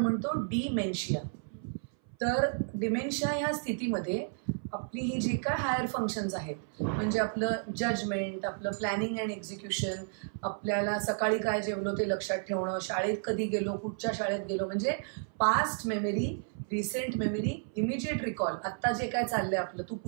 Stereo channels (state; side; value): silent; left; 56 dB below the other